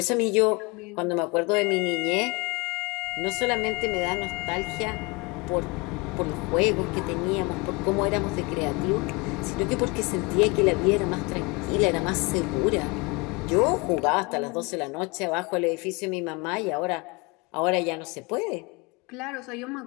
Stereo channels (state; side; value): quieter; right; 27.7 dB